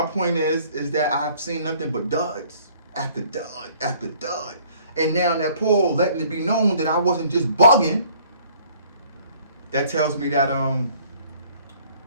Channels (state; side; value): inverted; both; correlation -0.57